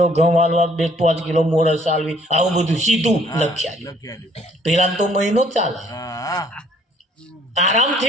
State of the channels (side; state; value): both; normal; correlation 0.61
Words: ઘઉં હાલવા, 2-5 કિલો મોરસ હાલવી, આવું બધું સીધું લખ્યાલી. પેલા તો મહિનો ચાલે,